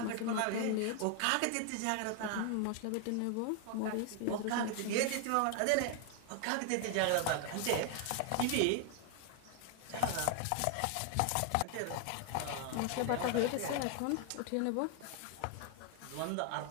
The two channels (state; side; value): different; both; correlation 0.00